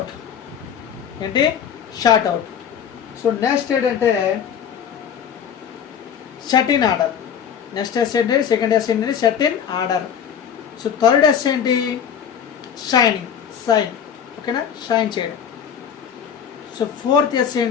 ఏంటి షార్ట్ అవుట్. సో నెక్స్ట్ ఏంటంటే set in order. Next S ఏంటి, సెకండ్ S ఏంటి set in order. So third S ఏంటి షైనింగ్, సైన్. ఓకేనా, షైన్ చేయడం. సో ఫోర్త్ S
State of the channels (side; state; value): right; quieter; 8.1 dB